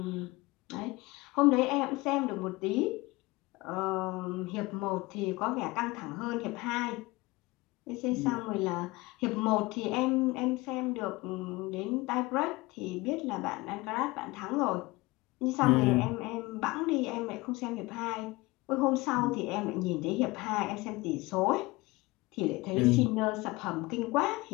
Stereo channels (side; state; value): right; quieter; 22.3 dB